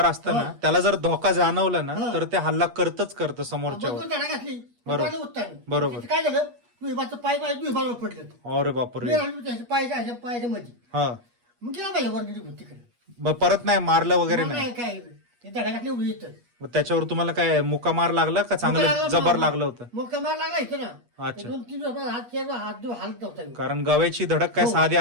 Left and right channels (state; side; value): late; left; 8.3 ms